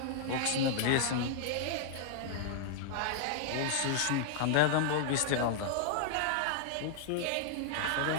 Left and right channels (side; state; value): both; different; correlation -0.01